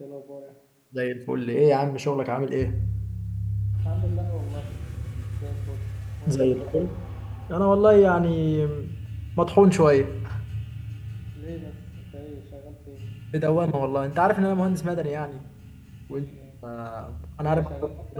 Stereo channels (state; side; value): identical; both; correlation 1.00